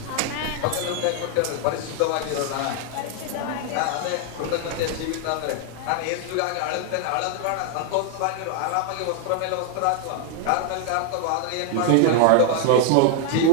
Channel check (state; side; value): different; both; correlation 0.00